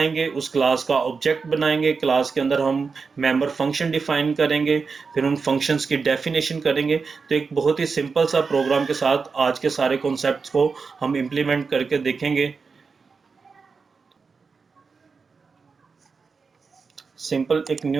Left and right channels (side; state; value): left; quieter; 4.9 dB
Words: उस क्लास का ऑब्जेक्ट बनाएंगे, क्लास के अंदर हम मेंबर फंक्शन डिफाइन करेंगे, फिर उन फंक्शंस की डेफिनेशन करेंगे। तो एक बहुत ही सिंपल सा प्रोग्राम के साथ आज के सारे कॉन्सेप्ट्स को हम इम्प्लीमेंट करके देखेंगे। सिंपल एक